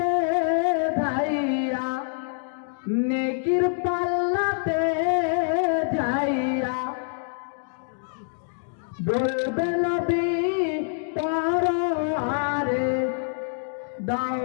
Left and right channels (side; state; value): right; silent; digital silence